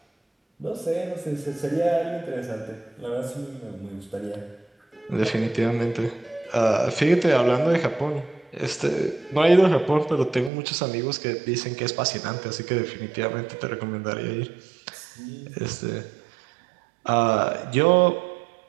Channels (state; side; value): drops out; left; at 10.5 s